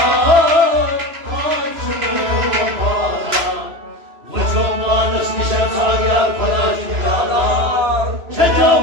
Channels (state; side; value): late; left; 3.0 ms